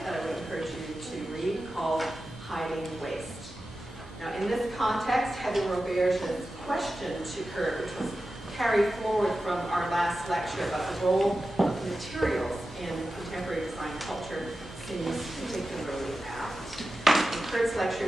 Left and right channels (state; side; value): normal; both; correlation 0.93